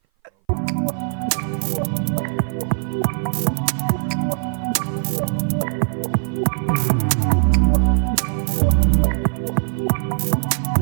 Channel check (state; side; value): silent; left; 58 dB below the other